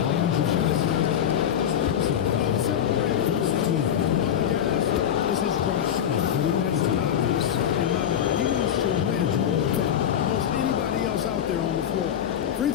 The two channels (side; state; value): right; quieter; 9.5 dB